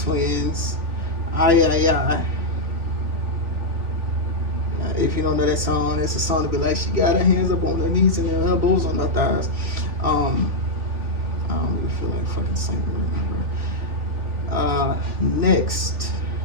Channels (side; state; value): left; late; 3.5 ms